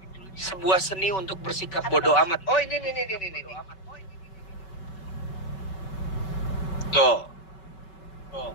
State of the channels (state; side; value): late; right; 5.3 ms